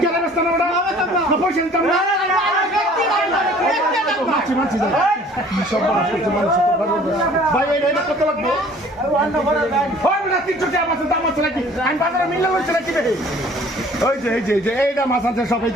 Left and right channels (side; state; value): both; normal; correlation 0.52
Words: কেন ব্যস্ত না ওটা না পয়সা দিতাম না মাছি সব ভাই এটা কত লাগবে হয় না 300 টাকা মাছের দাম আছে নাকি আমি বাজারে মিললে হইছে নাকি রে ওই যে এইটা মাছ আছে সব এই